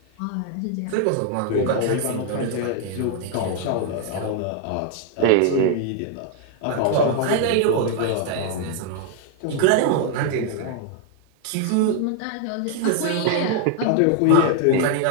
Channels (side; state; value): both; different; correlation 0.00